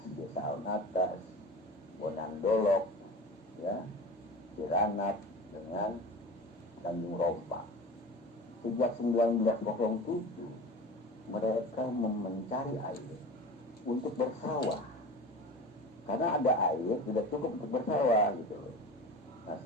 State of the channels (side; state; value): both; normal; correlation 0.34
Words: Desa Haun Atas, Bonandolok, ya, Ciranat dengan Tanjung Rompa. Sejak 1907 mereka mencari air untuk bersawah. Karena ada air tidak cukup untuk bersawah gitu loh. Nah